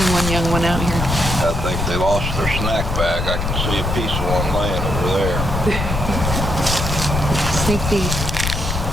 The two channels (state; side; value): noise; left; rumble, 2 dB below the sound